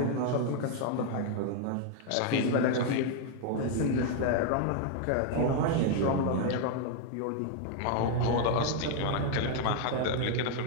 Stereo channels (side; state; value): both; different; correlation 0.00